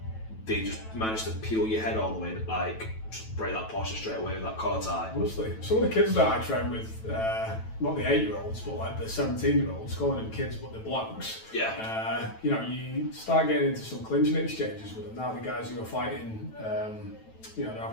they just manage to peel your head all the way, like just break that posture straight away with that collar tie. Honestly, some of the kids that I train with, not the 8-year-olds, but like the 17-year-olds, calling them kids but they're blokes. Yeah. You start getting into some clinching exchanges with them. Now the guys who are fighting, they're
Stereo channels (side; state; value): right; late; 9.1 ms